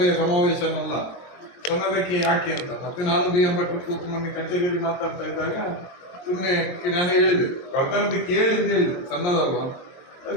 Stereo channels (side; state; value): right; late; 22 ms